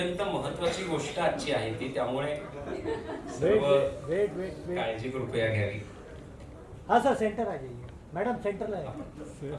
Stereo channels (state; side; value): identical; both; correlation 1.00